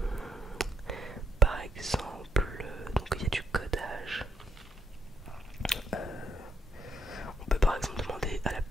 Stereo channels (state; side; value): normal; both; correlation 0.74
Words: par exemple donc il y a du codage. On peut par exemple demander